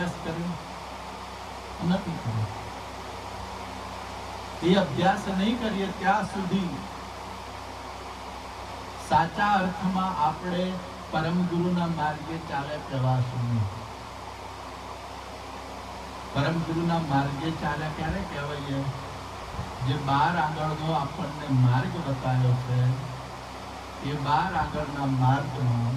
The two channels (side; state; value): both; identical; correlation 1.00